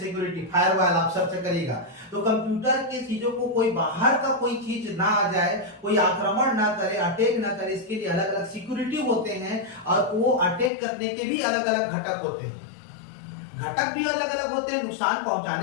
फायरवॉल, आप सर्च करिएगा तो कंप्यूटर के चीजों को कोई बाहर का कोई चीज ना आ जाए, कोई आक्रमण ना करे, अटैक ना करे, इसके लिए अलग अलग सिक्योरिटी होते हैं, और वो अटैक करने के भी अलग अलग घटक होते हैं। घटक भी अलग अलग होते हैं, नुकसान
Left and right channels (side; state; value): right; drops out; at 10.7 s